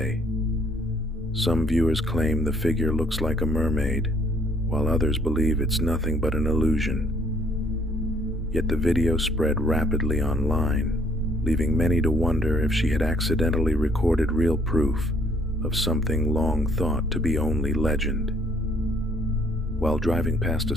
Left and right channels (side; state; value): both; normal; correlation 0.62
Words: Some viewers claim the figure looks like a mermaid, while others believe it's nothing but an illusion. Yet the video spread rapidly online, leaving many to wonder if she had accidentally recorded real proof of something long thought to be only legend. While driving past a